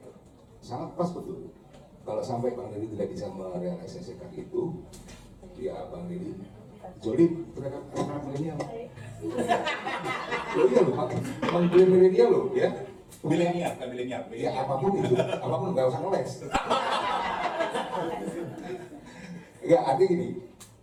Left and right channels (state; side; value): identical; both; correlation 1.00